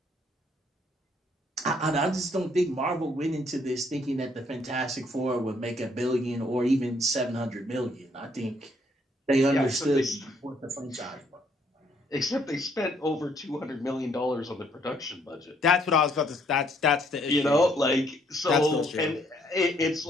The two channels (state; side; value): normal; both; correlation 0.67